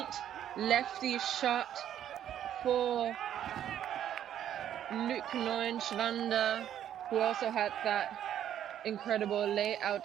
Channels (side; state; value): left; quieter; 10.5 dB